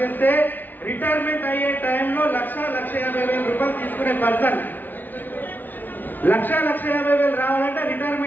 చేస్తే రిటైర్మెంట్ అయ్యే టైంలో 1,50,000 రూపాయలు తీసుకునే పర్సన్. 1,50,000 రావాలంటే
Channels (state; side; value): late; right; 0.086 ms